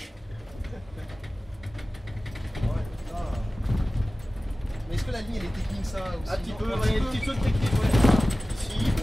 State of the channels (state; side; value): normal; both; correlation 0.97